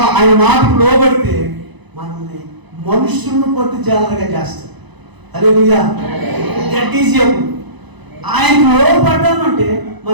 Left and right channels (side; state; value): left; late; 1.0 ms